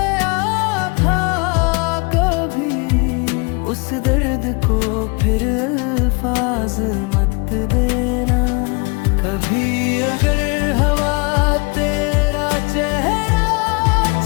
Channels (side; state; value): right; quieter; 30.4 dB